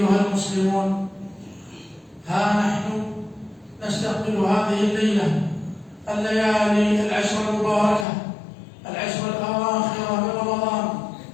المسلمون ها نحن نستقبل هذه الليلة الليالي العشر المباركة العشر الأواخر من رمضان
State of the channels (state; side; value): drops out; right; at 8.1 s